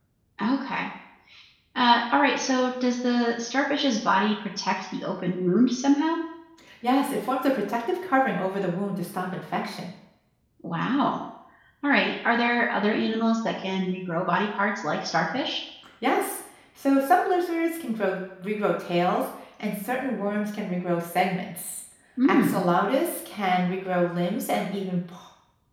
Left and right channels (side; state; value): both; identical; correlation 1.00